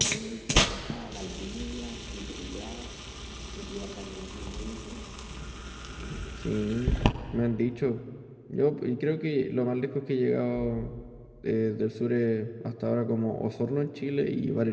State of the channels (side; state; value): both; identical; correlation 1.00